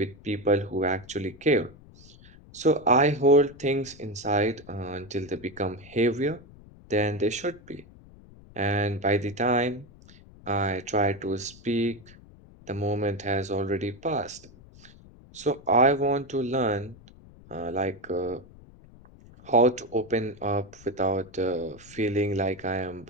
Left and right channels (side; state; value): left; noise; rumble, 22 dB below the sound